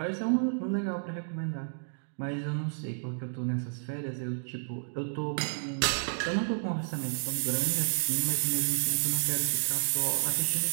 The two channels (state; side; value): silent; left; digital silence